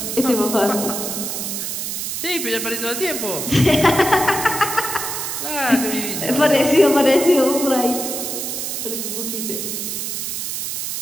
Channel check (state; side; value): noise; right; hiss, 3 dB below the sound